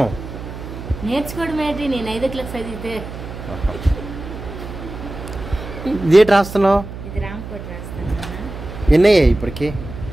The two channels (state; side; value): noise; right; hum, 10 dB below the sound